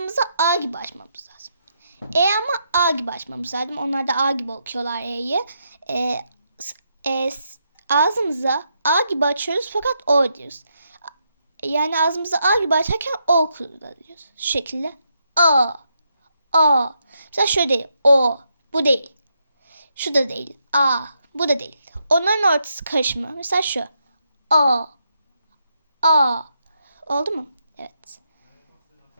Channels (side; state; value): both; inverted; correlation -0.80